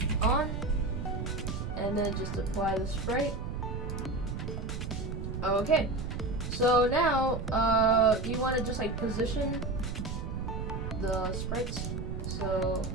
on, and then just apply the sprite. Okay, so now you want to just like position the sprites. So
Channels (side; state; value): right; noise; rumble, 5 dB below the sound